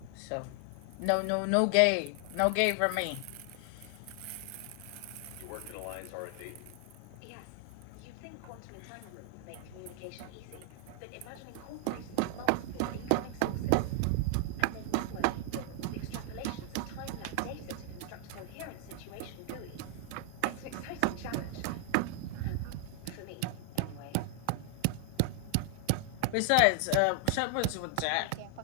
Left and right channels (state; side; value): different; both; correlation 0.00